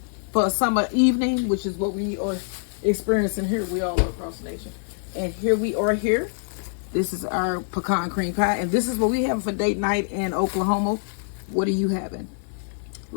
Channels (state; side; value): silent; right; digital silence